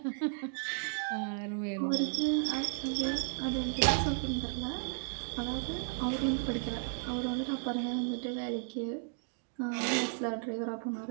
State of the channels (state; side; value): silent; left; digital silence